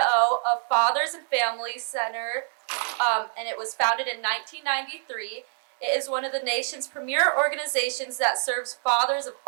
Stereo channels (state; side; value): silent; left; 61 dB below the other